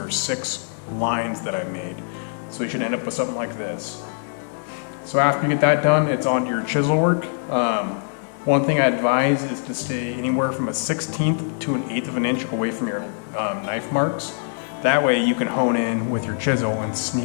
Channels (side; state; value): right; silent; 63 dB below the other